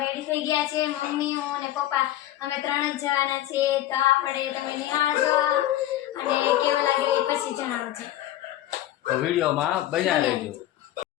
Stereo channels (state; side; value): quieter; right; 13.6 dB